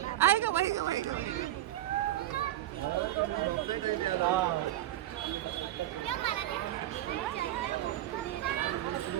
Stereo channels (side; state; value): left; quieter; 13.9 dB